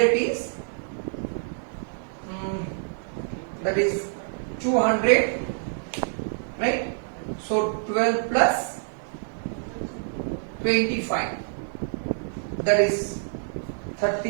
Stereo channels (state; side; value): silent; left; digital silence